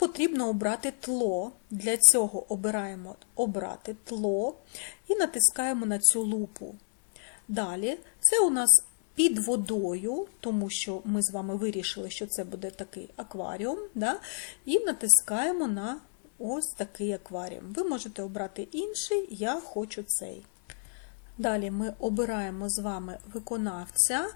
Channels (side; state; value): right; silent; digital silence